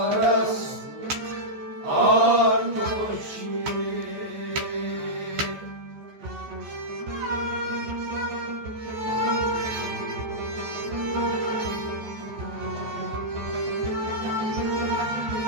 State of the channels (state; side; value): late; left; 14 ms